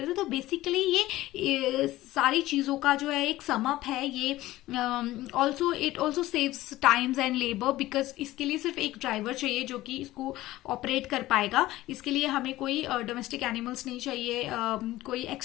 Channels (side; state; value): right; quieter; 16.6 dB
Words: है। तो बेसिकली ये सारी चीज़ों का जो है एक सम अप है। ये also it also saves times and labour, because इसके लिए सिर्फ एक ड्राइवर चाहिए जो कि इसको ऑपरेट कर पाएगा। इसके लिए हमें कोई डोमेस्टिक एनिमल्स नहीं चाहिए, कोई